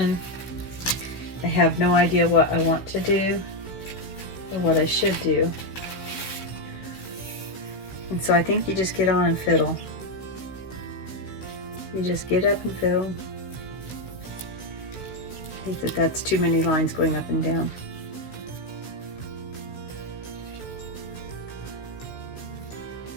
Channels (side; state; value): right; late; 16 ms